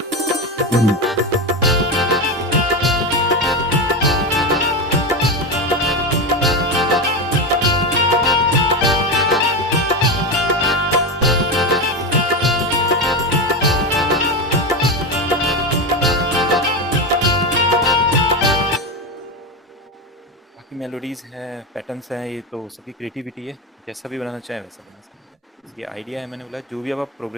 बाकी मेलोडीज़ हैं, पैटर्न्स हैं, ये तो सबकी क्रिएटिविटी है। जैसा भी बनाना चाहें वैसा बना सकते हैं। बस ये आइडिया है, मैंने बोला जो भी अब आप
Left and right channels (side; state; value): both; normal; correlation 0.16